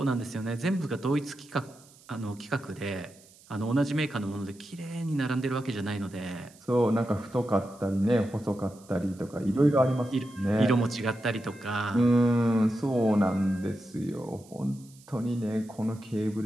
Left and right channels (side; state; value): right; noise; hiss, 25 dB below the sound